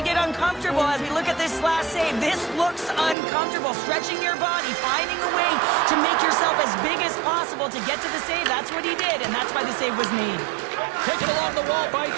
get uncomfortable. As we look at this last save, this looks uncomfortable. Stretching your body, finding a way to make yourself as big as possible to get to the save. That's what he did, and that's why the save was made. Taken along the wall by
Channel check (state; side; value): drops out; left; at 3.2 s